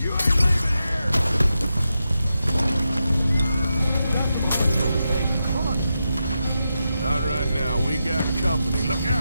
ain't leaving here! Come on. Not right now. We got company. Look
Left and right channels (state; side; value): inverted; both; correlation -0.88